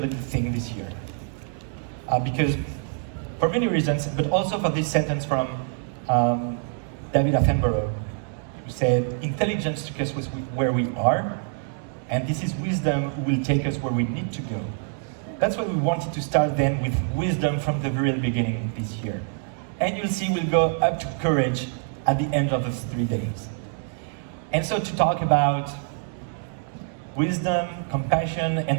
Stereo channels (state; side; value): silent; left; 61 dB below the other